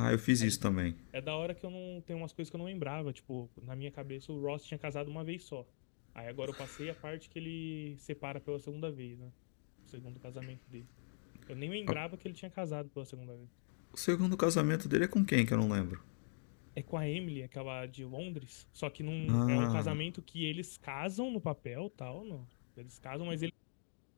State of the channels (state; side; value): silent; right; digital silence